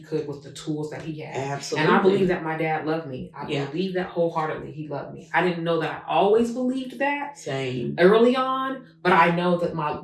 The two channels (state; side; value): identical; both; correlation 1.00